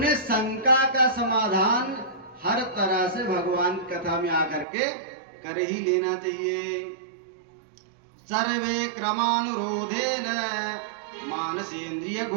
शंका का समाधान हर तरह से भगवान की कथा में आकर के कर ही लेना चाहिए। सर्वे क्रमानुरोधेन मानसेन्द्रिय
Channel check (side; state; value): left; drops out; at 4.7 s